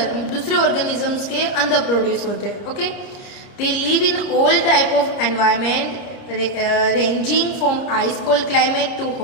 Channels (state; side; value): late; right; 30 ms